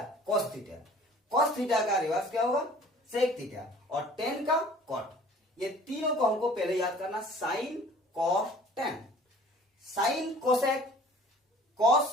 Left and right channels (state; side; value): normal; both; correlation 0.49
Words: कॉस थीटा, कॉस थीटा का रिवर्स क्या होगा सेक थीटा और टेन का कॉट। ये तीनों को हमको पहले याद करना, sine cos tan, sine cosec cos